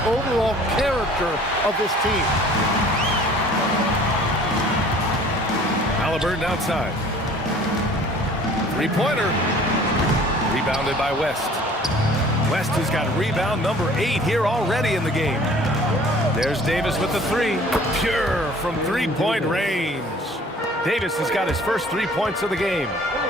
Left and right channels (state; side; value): normal; both; correlation 0.51